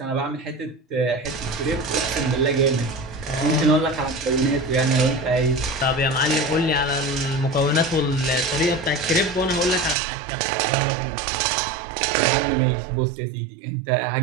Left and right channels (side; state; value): left; drops out; at 10.0 s